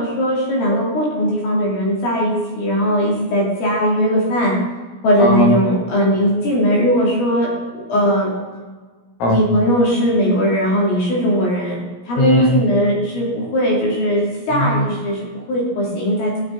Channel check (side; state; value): right; late; 17 ms